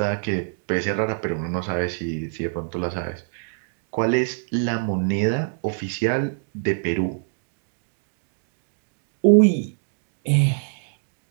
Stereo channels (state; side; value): silent; left; digital silence